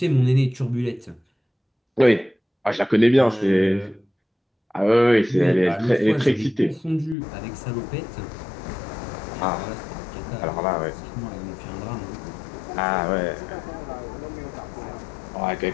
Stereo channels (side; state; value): right; drops out; at 7.2 s